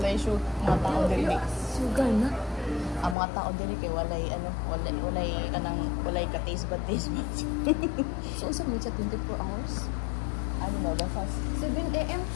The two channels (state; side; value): drops out; right; at 3.2 s